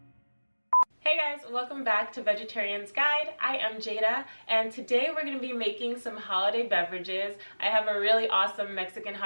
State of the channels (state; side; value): inverted; both; correlation -1.00